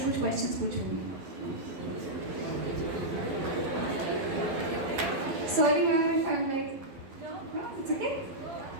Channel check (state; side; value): late; left; 11 ms